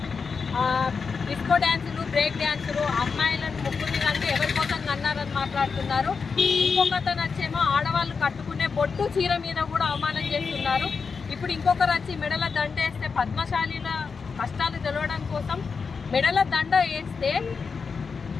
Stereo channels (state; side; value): quieter; right; 5.3 dB